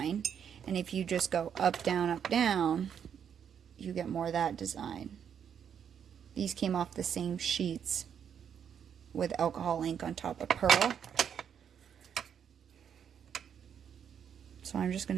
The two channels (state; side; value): quieter; left; 8.1 dB